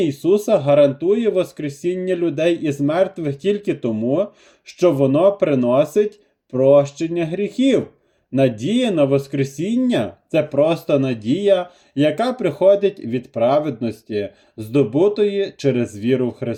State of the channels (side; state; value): both; identical; correlation 1.00